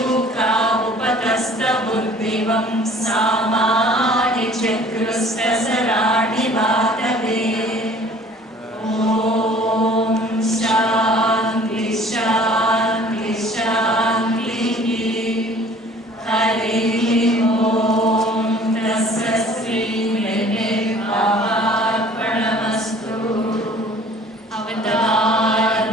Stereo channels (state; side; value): normal; both; correlation 0.51